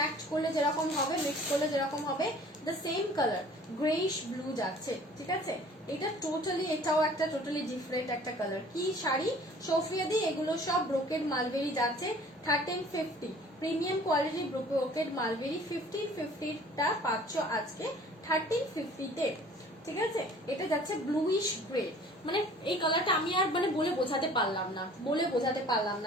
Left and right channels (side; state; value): both; normal; correlation 0.50